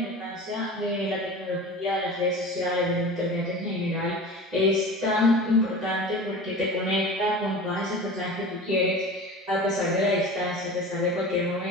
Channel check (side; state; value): both; normal; correlation 0.34